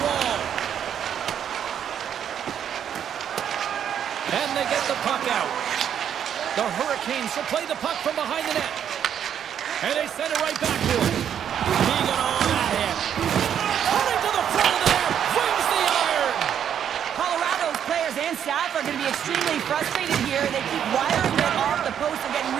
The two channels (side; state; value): left; quieter; 9.0 dB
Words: wall. And they get the puck out. The Hurricanes will play the puck from behind the net. And they send it right back to him. Keegan on that hit. Coming to the front of the net. Wins the iron. Colorado's players and staff are going to be extremely frustrated here. They keep wiring it off the post and getting